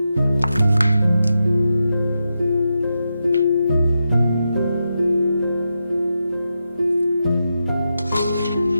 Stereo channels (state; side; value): inverted; both; correlation -0.87